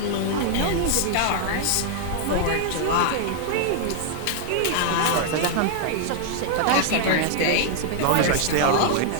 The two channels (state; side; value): different; both; correlation 0.00